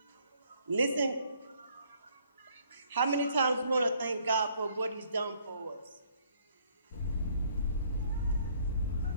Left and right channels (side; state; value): both; inverted; correlation -0.64